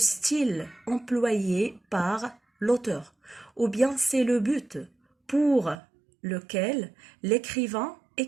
employé par l'auteur, ou bien c'est le but pour lequel l'écrivain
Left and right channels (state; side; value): drops out; left; at 5.8 s